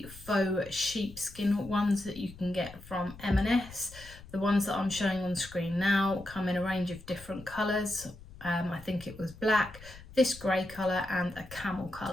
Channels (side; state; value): left; noise; rumble, 18 dB below the sound